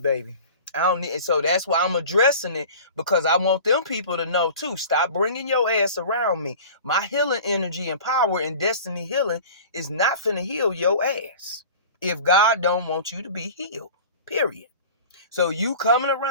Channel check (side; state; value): both; inverted; correlation -0.40